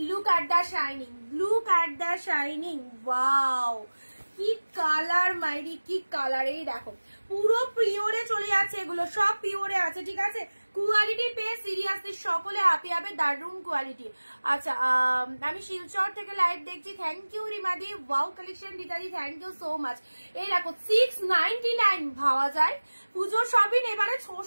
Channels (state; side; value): inverted; both; correlation -1.00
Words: look at the shining, look at the shining, wow কি কালার মাইরি, কি কালার। এই দেখো পুরো পিওরে চলে যাচ্ছে, এগুলো সব পিওরে আছে, ঠিক আছে? কোয়ালিটি পেয়ে সিরিয়াসলি সকলে হাপি হবে, দারুন কোয়ালিটি। আচ্ছা আমি শিলচর থেকে লাইভ দেখছি, থ্যাংক ইউ রিমাদি। ওয়াও কালেকশন দিদাদি, থ্যাংক ইউ সো মাচ। এই দেখো 699 ভাবা যায়। পুজোর শপিং এবারে